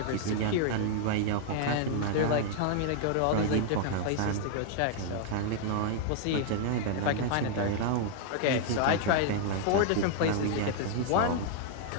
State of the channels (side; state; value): both; different; correlation -0.01